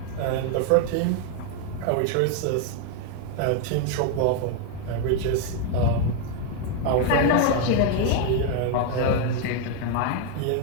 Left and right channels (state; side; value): different; both; correlation 0.00